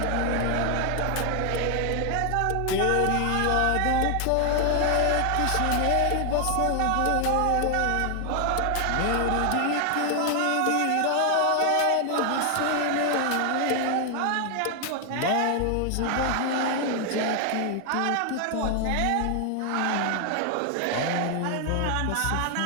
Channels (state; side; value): different; both; correlation 0.00